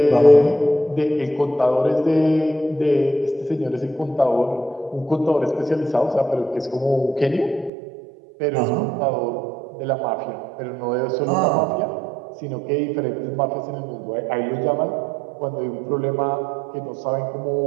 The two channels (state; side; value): drops out; left; at 7.7 s